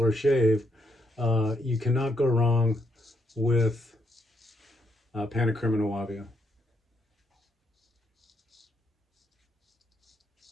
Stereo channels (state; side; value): normal; both; correlation 0.76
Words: shave, you cannot go wrong with PannaCrema Nuavia.